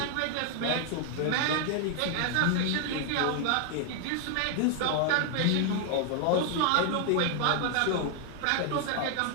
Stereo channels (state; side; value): different; both; correlation 0.00